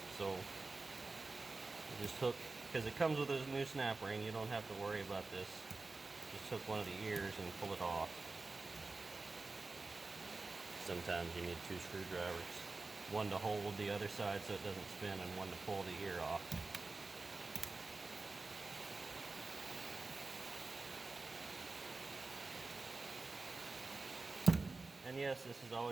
So just hook, because it comes with a new snap ring, you don't have to worry about this. Just hook one of the ears and pull it off. Sometimes you need two screwdrivers. One to hold the other side so it doesn't spin, and one to pull the ear off. And yes, this is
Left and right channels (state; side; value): quieter; left; 3.6 dB